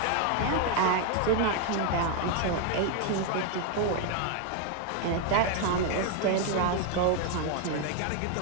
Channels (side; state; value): both; different; correlation 0.01